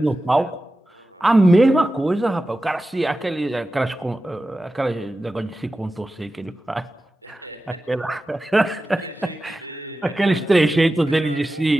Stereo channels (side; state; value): both; normal; correlation 0.94